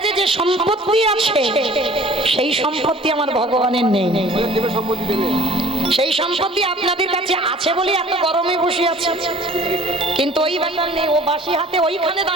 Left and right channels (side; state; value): both; normal; correlation 0.49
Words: যে সম্পত্তি আছে সেই সম্পত্তি আমার ভগবানের নেই। সেই সম্পত্তি আপনাদের কাছে আছে বলে এত গরমে বসে আছে, কিন্তু ওই ব্যাপার নেই। ও বাসি হাতে ওইখানে